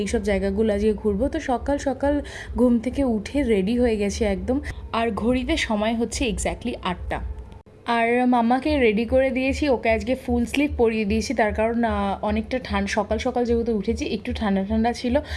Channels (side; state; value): both; identical; correlation 1.00